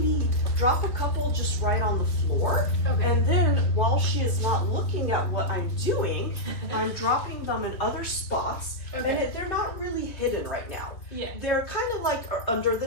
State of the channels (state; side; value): late; right; 2.9 ms